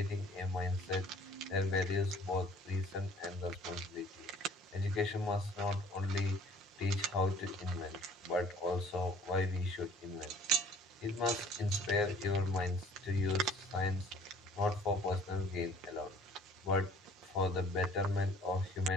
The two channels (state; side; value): normal; both; correlation 0.54